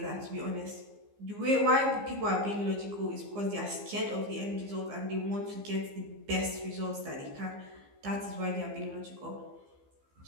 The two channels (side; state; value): left; late; 15 ms